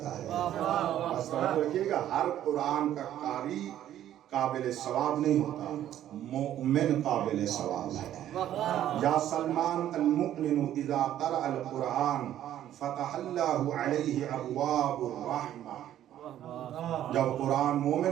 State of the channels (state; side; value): quieter; left; 11.8 dB